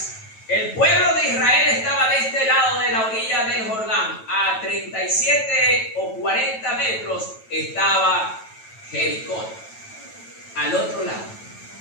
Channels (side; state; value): right; late; 9.1 ms